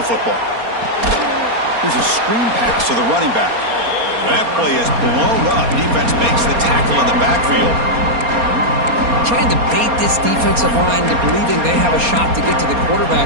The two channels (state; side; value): late; left; 4.3 ms